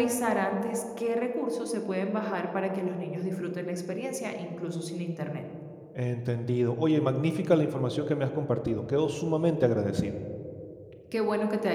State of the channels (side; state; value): both; identical; correlation 1.00